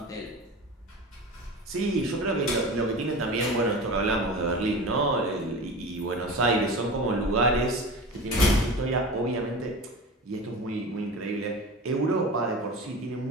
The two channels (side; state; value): both; normal; correlation 0.32